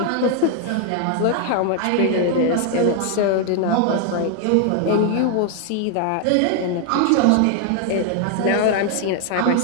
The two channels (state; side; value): different; both; correlation 0.00